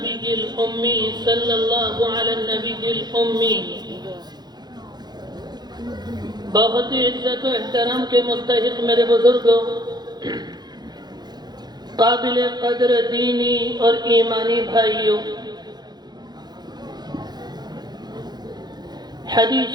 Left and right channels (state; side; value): late; left; 0.20 ms